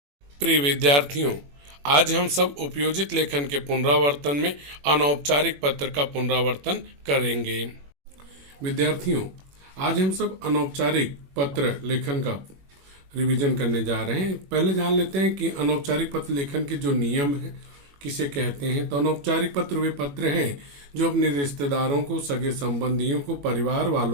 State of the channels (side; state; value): left; late; 21 ms